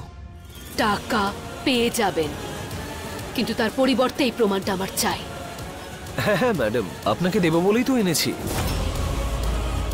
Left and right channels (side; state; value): both; identical; correlation 1.00